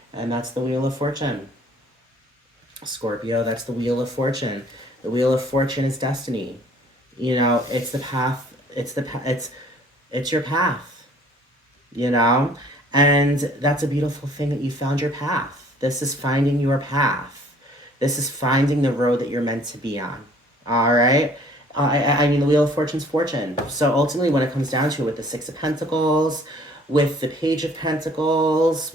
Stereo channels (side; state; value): both; normal; correlation 0.56